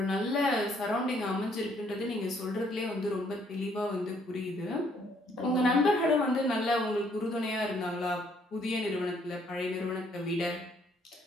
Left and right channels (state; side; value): normal; both; correlation 0.66